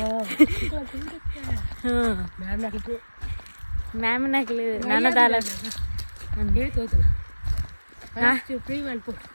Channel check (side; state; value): both; inverted; correlation -1.00